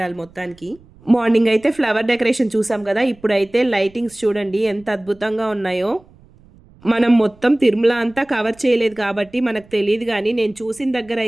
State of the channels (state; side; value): noise; right; rumble, 27 dB below the sound